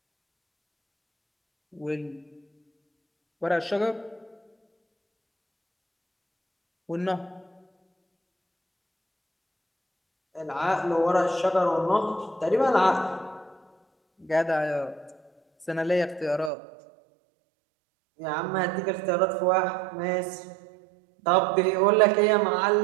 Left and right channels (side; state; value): left; drops out; at 16.5 s